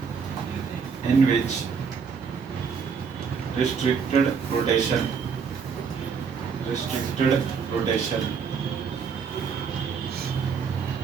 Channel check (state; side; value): quieter; left; 6.0 dB